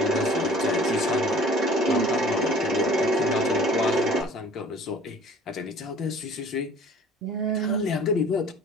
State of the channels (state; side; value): normal; both; correlation 0.48